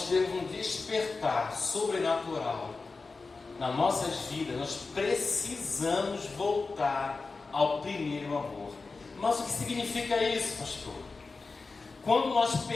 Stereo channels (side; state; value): right; quieter; 4.0 dB